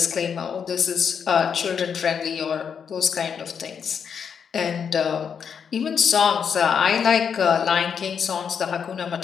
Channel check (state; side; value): quieter; right; 7.0 dB